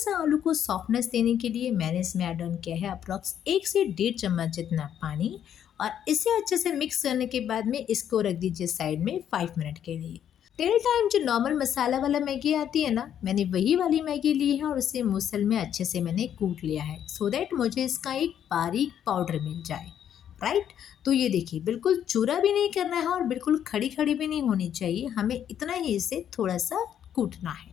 आलू को सॉफ्टनेस देने के लिए मैंने इसमें ऐड ऑन किया है अप्रॉक्स 1 से 1.5 चम्मच जितना पानी। और इसे अच्छे से मिक्स करने के बाद में इसको रख दीजिए साइड में 5 मिनट के लिए। टिल टाइम जो नॉर्मल मसाला वाला मैगी आती है ना, मैंने वही वाली मैगी ली है और उसे मूसल में अच्छे से मैंने कूट लिया है सो दैट मुझे इसका एक बारीक पाउडर मिल जाए। राइट, तो ये देखिए बिल्कुल चूरा भी नहीं करना है और बिल्कुल खड़ी खड़ी भी नहीं होनी चाहिए, हमें इतना ही इसे थोड़ा सा कूटना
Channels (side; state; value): right; quieter; 9.6 dB